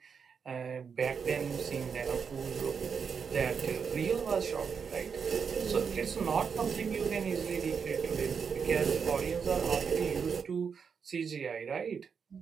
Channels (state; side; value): quieter; left; 6.3 dB